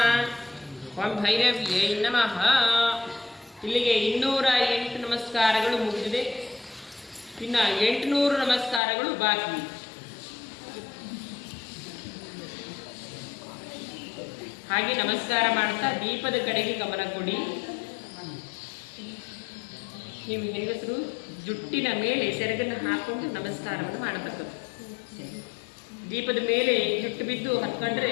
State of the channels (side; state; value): right; drops out; at 8.8 s